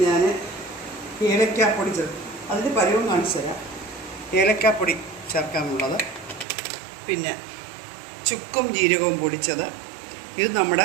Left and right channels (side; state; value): left; drops out; at 6.5 s